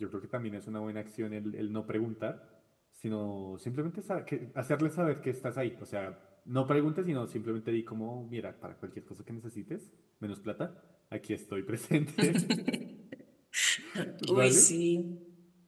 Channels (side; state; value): both; identical; correlation 1.00